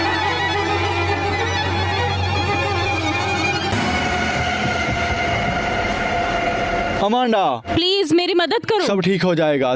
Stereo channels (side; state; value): both; identical; correlation 1.00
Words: अमांडा, प्लीज मेरी मदद करो। सब ठीक हो जाएगा,